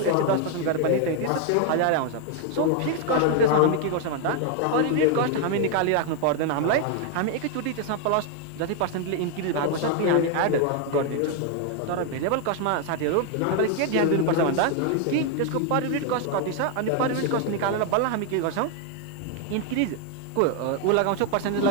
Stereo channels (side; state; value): both; different; correlation 0.00